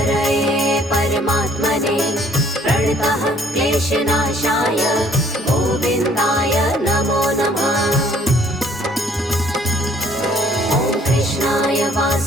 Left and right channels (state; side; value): normal; both; correlation 0.60